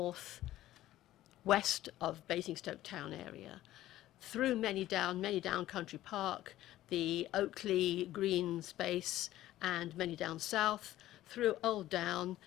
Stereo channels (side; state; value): right; quieter; 14.5 dB